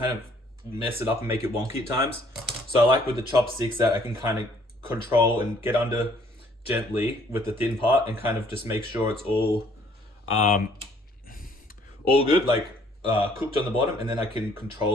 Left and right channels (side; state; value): both; normal; correlation 0.61